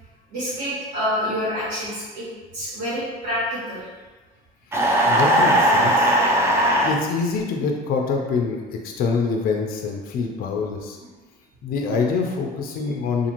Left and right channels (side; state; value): both; normal; correlation 0.34